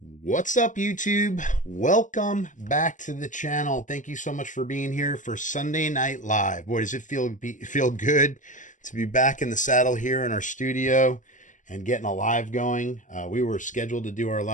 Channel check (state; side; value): late; right; 0.37 ms